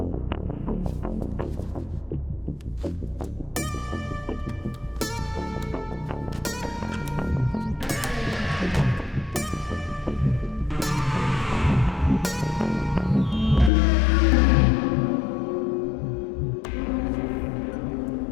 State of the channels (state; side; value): drops out; right; at 13.7 s